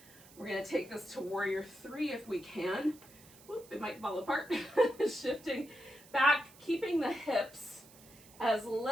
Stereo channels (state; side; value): noise; right; hiss, 22 dB below the sound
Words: We're going to take this to warrior 3 if we can. Whoop, it might fall apart. Shifting back, keeping the hips as